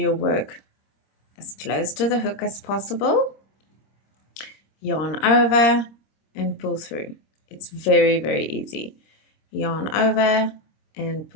work as close to the hook as possible, yarn over, and pull through. It's very easy. Yarn over and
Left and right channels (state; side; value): late; right; 26 ms